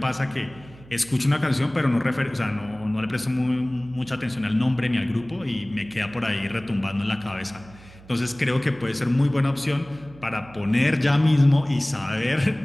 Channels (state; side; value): noise; right; hum, 21 dB below the sound